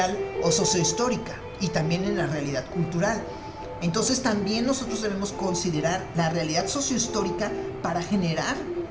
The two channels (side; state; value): both; identical; correlation 1.00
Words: o sociohistórica y también en la realidad cultural. Entonces también nosotros debemos considerar la realidad sociohistórica para generar